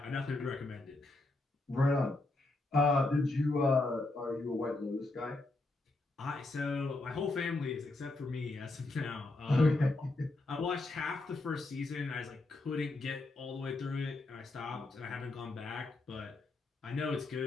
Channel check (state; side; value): quieter; right; 3.0 dB